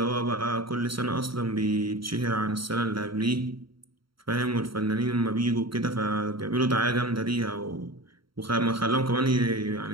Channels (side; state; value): left; late; 0.74 ms